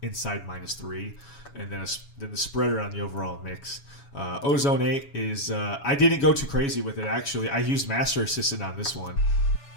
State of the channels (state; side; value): late; right; 7.1 ms